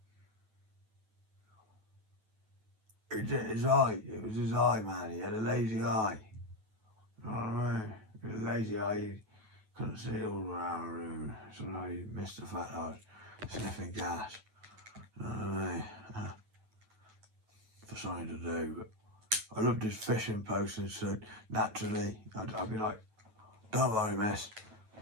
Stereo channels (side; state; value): left; late; 9.2 ms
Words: his eye, it was his eye, man. He had a lazy eye. You know what I mean? He had a lazy eye. He couldn't see all around the room. Somehow he missed the fact that I was sniffing gas. You know what I mean? For something to do, but I loved his fishing posting, so naturally I'd be like, "Don't worry, miss,